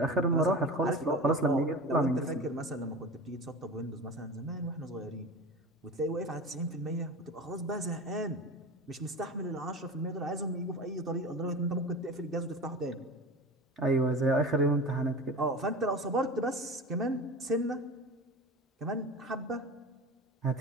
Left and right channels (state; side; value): normal; both; correlation 0.31